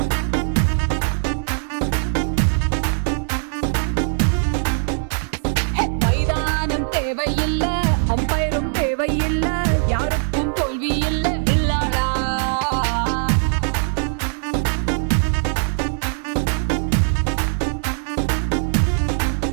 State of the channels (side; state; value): left; silent; digital silence